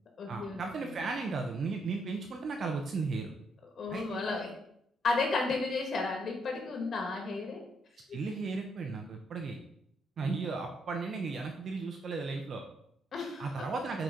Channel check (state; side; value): normal; both; correlation 0.75